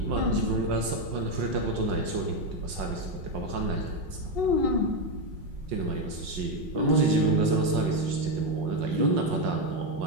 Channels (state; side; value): late; left; 5.5 ms